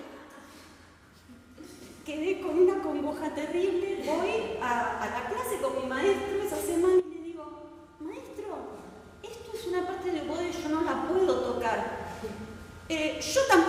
Quedé con una congoja terrible. Voy a la clase con mi maestro esa semana y le digo: maestro, esto es una parte de oboe, yo no la puedo tocar. Yo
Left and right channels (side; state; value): both; identical; correlation 1.00